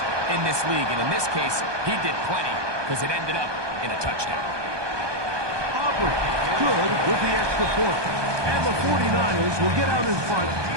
in this league. And in this case, he did plenty, because it ended up in a touchdown. Aubrey, good with the extra point. And the 49ers will get out in front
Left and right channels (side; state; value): left; late; 1.2 ms